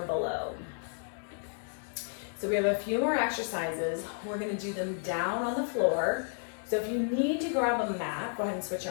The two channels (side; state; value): right; silent; 56 dB below the other